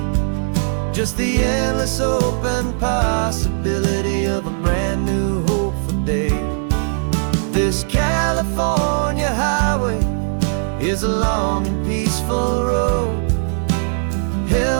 just the endless open possibility of a brand new hopeful day. This California highway is a long and peaceful road,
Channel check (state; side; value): silent; left; 67 dB below the other